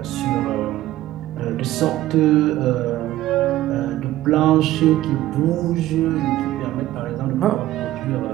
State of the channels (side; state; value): left; quieter; 14.9 dB